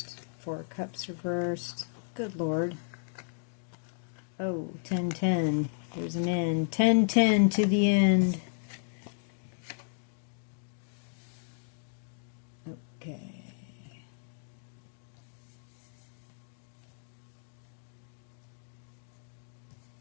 Four of Cups reversed. Good Lord. Oh, 10-10. There's an end. 10-10 to the end. Okay.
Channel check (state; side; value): silent; right; digital silence